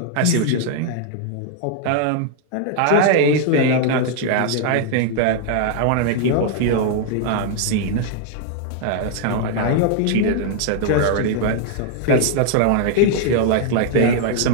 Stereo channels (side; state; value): both; different; correlation 0.00